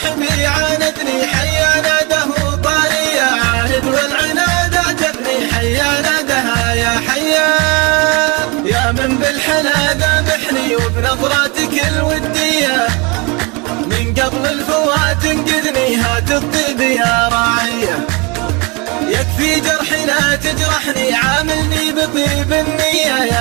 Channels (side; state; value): left; quieter; 28.5 dB